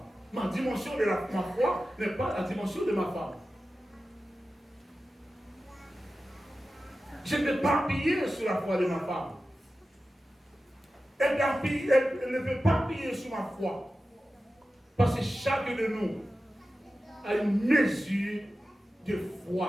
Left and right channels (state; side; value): normal; both; correlation 0.94